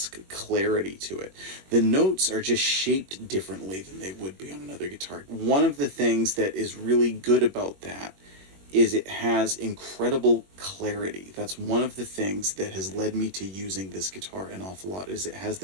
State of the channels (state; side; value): late; left; 21 ms